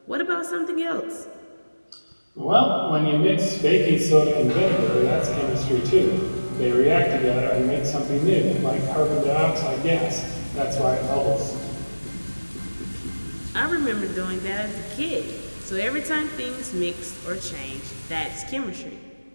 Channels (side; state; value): both; inverted; correlation -1.00